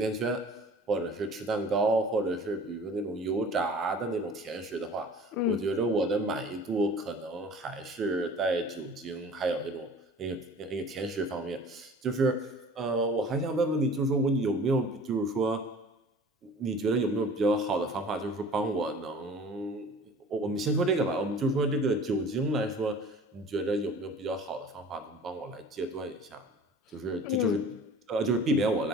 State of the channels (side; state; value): both; normal; correlation 0.45